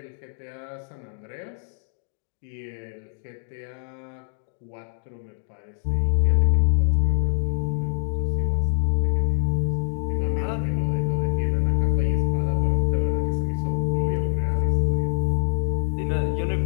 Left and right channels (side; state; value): right; silent; digital silence